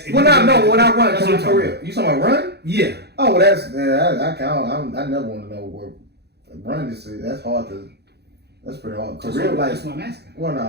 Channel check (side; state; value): left; late; 0.48 ms